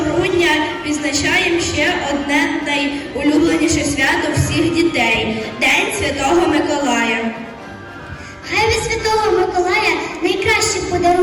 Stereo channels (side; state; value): both; identical; correlation 1.00